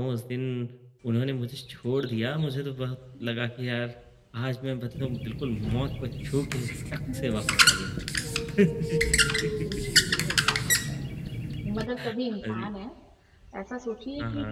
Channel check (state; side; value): identical; both; correlation 1.00